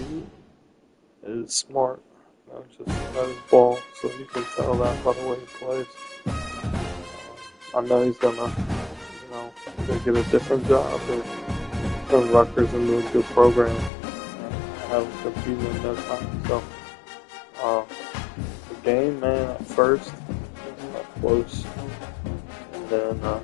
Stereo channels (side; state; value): right; drops out; at 13.9 s